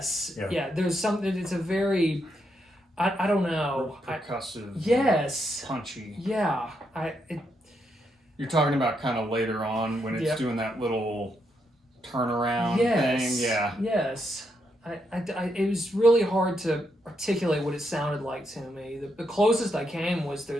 Yeah. there's something. It's a very, I don't know. Percussive. Yes. Punchy. Yeah. You're talking about kind of later on when it's Yep. doing that little turnaround Yes. thing. Yeah. Yes. It was really hard to articulate what it sounded like to me. The closest I came was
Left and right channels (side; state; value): both; normal; correlation 0.80